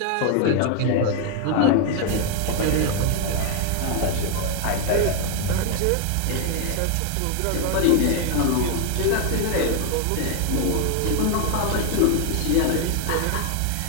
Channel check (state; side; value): different; both; correlation 0.00